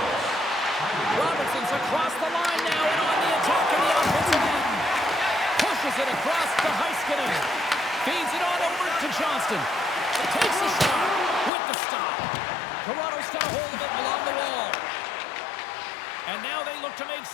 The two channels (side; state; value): right; drops out; at 11.5 s